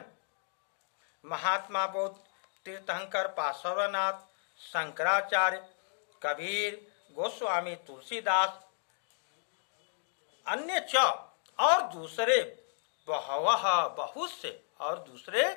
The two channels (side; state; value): right; silent; digital silence